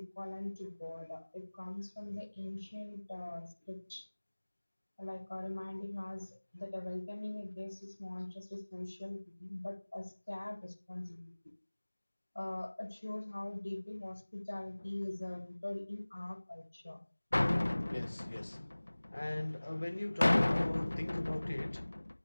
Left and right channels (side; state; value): both; inverted; correlation -1.00